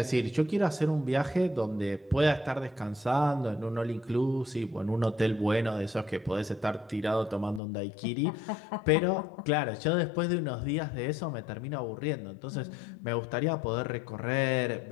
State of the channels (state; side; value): drops out; right; at 7.6 s